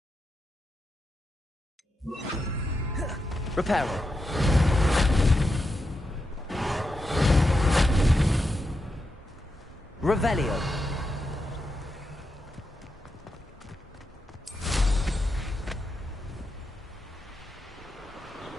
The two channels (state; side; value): normal; both; correlation 0.87